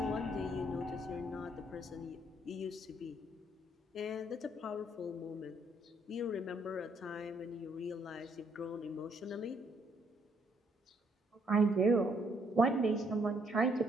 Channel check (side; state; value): both; normal; correlation 0.69